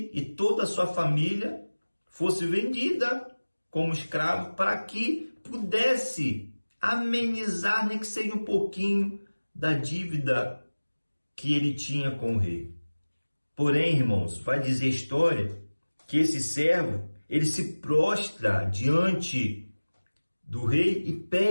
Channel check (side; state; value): both; inverted; correlation -1.00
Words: e toda a sua família fosse vendida como escravo para que pudesse amenizar, nem que seja um pouquinho, da dívida que ele tinha com o rei. Porém, irmãos, vai dizer a história que esse servo, ele se prostra diante do rei e